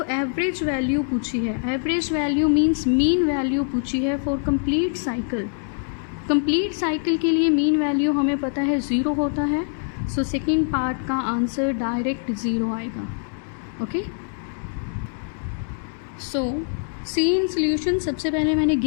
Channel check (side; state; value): right; silent; 63 dB below the other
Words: एवरेज वैल्यू पूछी है. Average value means mean value पूछी है for complete cycle. Complete cycle के लिए मीन वैल्यू हमें पता है 0 होता है. सो सेकेंड पार्ट का आंसर डायरेक्ट 0 आएगा. Okay. So C in solution सबसे पहले मैंने